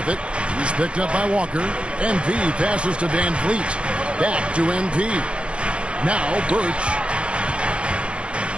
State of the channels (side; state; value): left; late; 0.059 ms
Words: it. He's picked up by Walker. MP passes to Van Vliet. Back to MP. Now Birch.